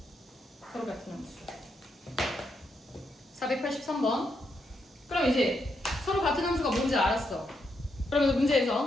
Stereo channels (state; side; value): normal; both; correlation 0.80